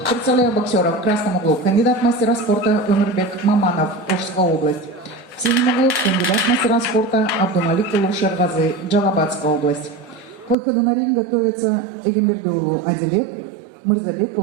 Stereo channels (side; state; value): left; drops out; at 10.6 s